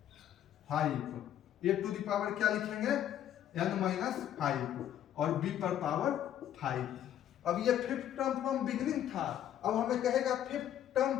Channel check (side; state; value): right; quieter; 11.0 dB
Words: a to the power क्या लिखेंगे n-5 और b पर पावर 5। अब ये फिफ्थ टर्म फ्रॉम बिगिनिंग था, अब हमें कहेगा फिफ्थ टर्म